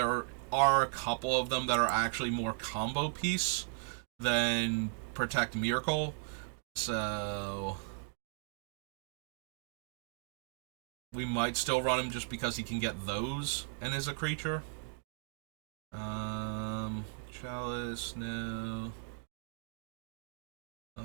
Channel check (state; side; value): silent; left; 53 dB below the other